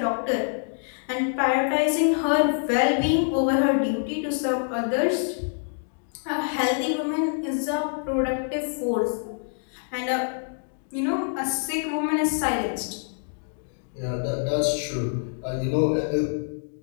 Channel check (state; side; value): silent; right; digital silence